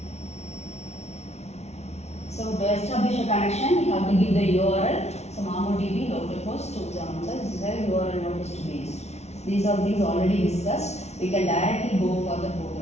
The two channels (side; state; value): right; late; 0.31 ms